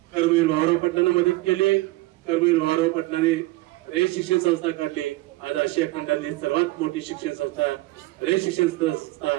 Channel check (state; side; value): quieter; left; 19.9 dB